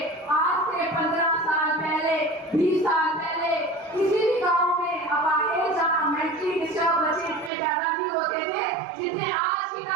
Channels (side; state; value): left; drops out; at 7.5 s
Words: आज से 15 साल पहले, 20 साल पहले किसी भी गाँव में अपाहिज या मेंटली डिस्टर्ब बच्चे इतने पैदा नहीं होते थे जितने आज की